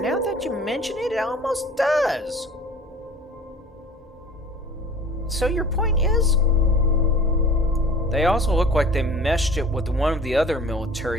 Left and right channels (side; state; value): both; normal; correlation 0.44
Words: that you mention it, it almost does. So your point is? They also look like they meshed it with one of the other